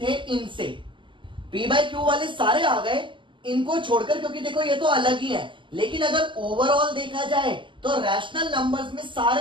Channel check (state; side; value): late; left; 0.24 ms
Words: थे इनसे। p by q वाले सारे आ गए इनको छोड़कर, क्योंकि देखो ये तो अलग ही है। लेकिन अगर ओवरऑल देखा जाए तो रैशनल नंबर्स में